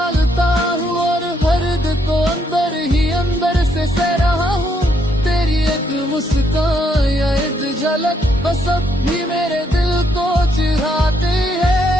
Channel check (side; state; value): both; normal; correlation 0.73